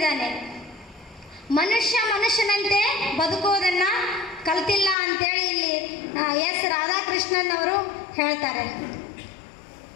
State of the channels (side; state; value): right; drops out; at 5.0 s